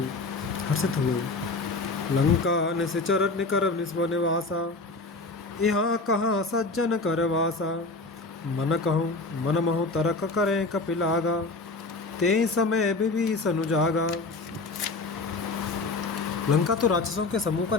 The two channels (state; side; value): quieter; right; 3.4 dB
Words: हर्षित हुए। लंका निश्चर निकर निस्व निवासा, यहाँ कहाँ सज्जन कर वासा। मन कहूँ मन महु तरक करें कपिलागा, ते समय विभीषण जागा। लंका तो राक्षसों के समूह का